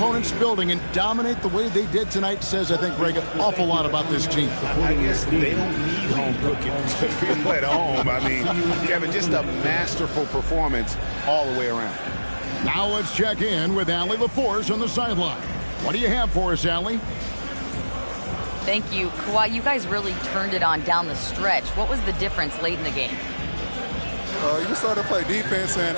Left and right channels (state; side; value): inverted; both; correlation -1.00